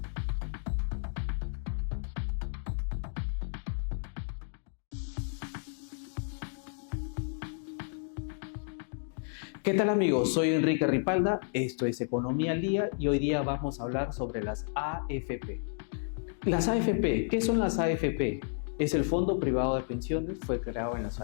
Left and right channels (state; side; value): silent; right; digital silence